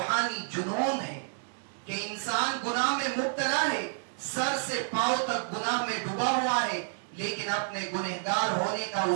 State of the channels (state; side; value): silent; left; 58 dB below the other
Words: جنون ہے کہ انسان گناہ میں مبتلا ہے، سر سے پاؤں تک گناہ میں ڈوبا ہوا ہے، لیکن اپنے گنہگار ہونے کا